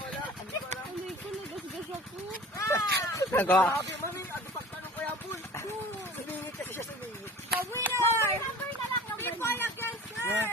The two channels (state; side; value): normal; both; correlation 0.41